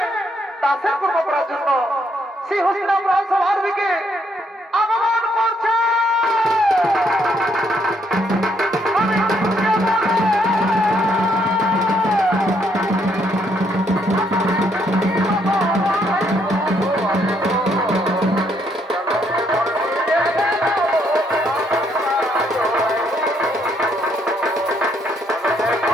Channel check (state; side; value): normal; both; correlation 0.72